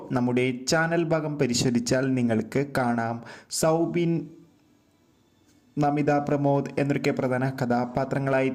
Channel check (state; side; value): identical; both; correlation 1.00